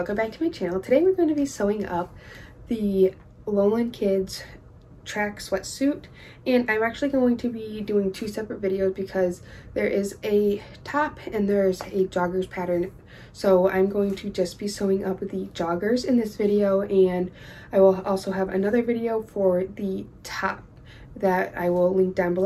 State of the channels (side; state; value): both; identical; correlation 1.00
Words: back to my channel. Today we're going to be sewing up the Lowland Kids track sweatsuit, and I'm actually going to be doing two separate videos because there is a top and there's a joggers pattern. So I'm going to just be sewing up the joggers in this video, and I will also have another video for the top that I will link down